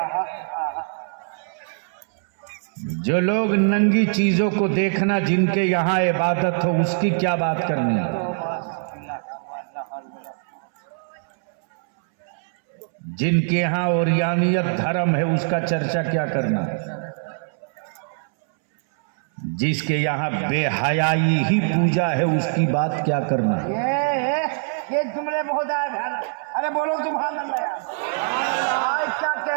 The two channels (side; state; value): left; silent; 63 dB below the other